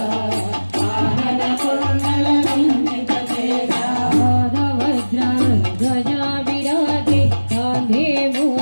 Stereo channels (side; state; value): both; inverted; correlation -1.00